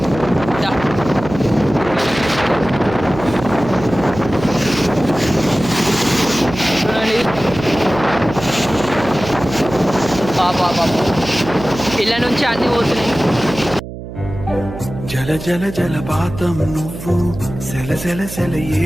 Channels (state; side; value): noise; right; hum, 11 dB below the sound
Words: ఇళ్ళ నుంచి అన్ని పోతున్నాయి. జల జల జలపాతం నువ్వు, సెల సెల సెల